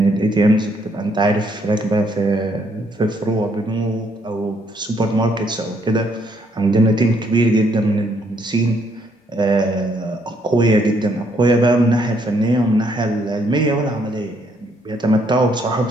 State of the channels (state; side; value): normal; both; correlation 0.70